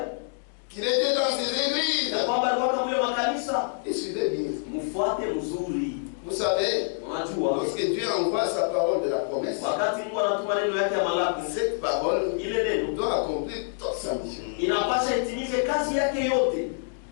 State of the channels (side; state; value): right; silent; digital silence